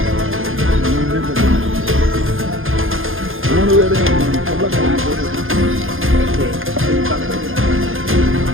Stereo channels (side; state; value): left; late; 0.59 ms